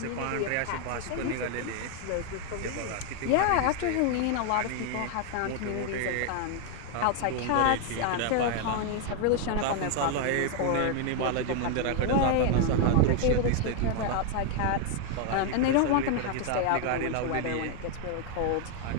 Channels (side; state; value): both; different; correlation 0.00